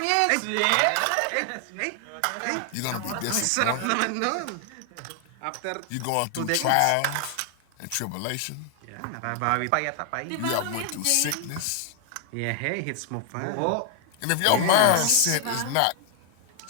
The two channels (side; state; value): both; different; correlation 0.00